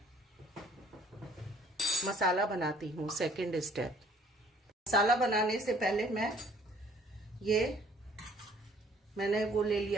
मसाला बनाती हूँ, सेकंड स्टेप। मसाला बनाने से पहले मैंने वो ले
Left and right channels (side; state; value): both; normal; correlation 0.57